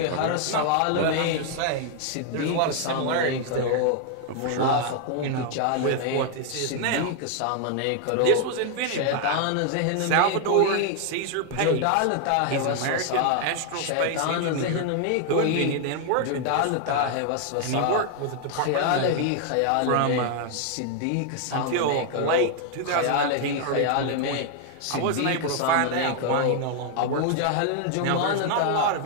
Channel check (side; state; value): both; different; correlation 0.00